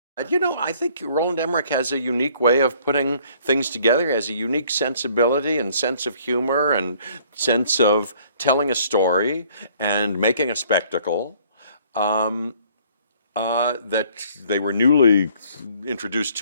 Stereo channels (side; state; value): both; inverted; correlation -0.59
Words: You know, I think Roland Emmerich has a unique way of putting things together, has a unique sensibility and sense of humor and sense of telling a story and making a spectacle that they were newly introduced